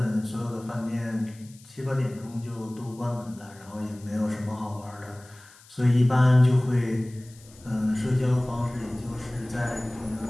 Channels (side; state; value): left; noise; hiss, 24 dB below the sound